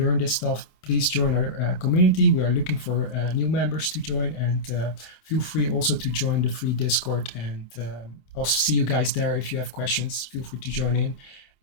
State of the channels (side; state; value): right; late; 27 ms